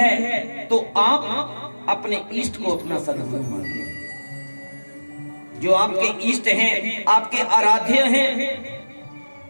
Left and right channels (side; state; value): both; inverted; correlation -1.00